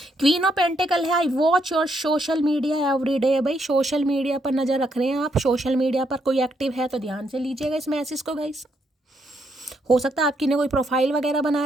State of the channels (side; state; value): both; normal; correlation 0.76